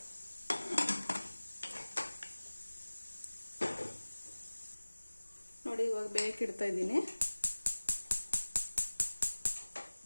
ನೋಡಿ, ಇವಾಗ ಬೇಯಕ್ಕಿಡ್ತಾ ಇದ್ದೀನಿ.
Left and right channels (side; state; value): both; inverted; correlation -1.00